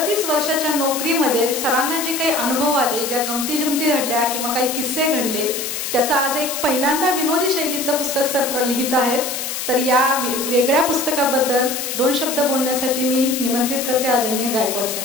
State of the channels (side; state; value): left; noise; hiss, 4 dB below the sound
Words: वर्षाच्या नोकरीमध्ये सरांना जे काही अनुभव आले, ज्या गमती जमती घडल्या किंवा काही किस्से घडले, त्याचा आज एक पहिल्यांदा विनोदी शैलीतलं पुस्तक सर लिहित आहेत. तर या वेगळ्या पुस्तकाबद्दल 2 शब्द बोलण्यासाठी मी निमंत्रित करते आदरणीय गायकवाड